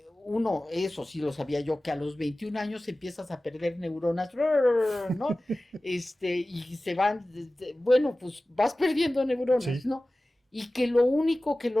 uno, eso sí lo sabía yo, que a los 21 años empiezas a perder neuronas, ¿no? Y se van, bueno, pues vas perdiendo neuronas, sí, ¿no? Y que lo único que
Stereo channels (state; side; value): normal; both; correlation 0.97